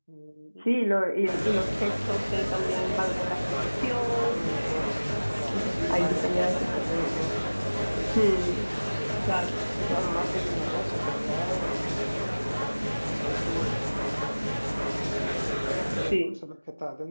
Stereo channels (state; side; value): inverted; both; correlation -1.00